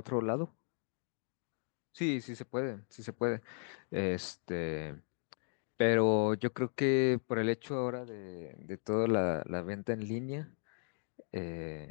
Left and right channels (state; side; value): silent; right; 53 dB below the other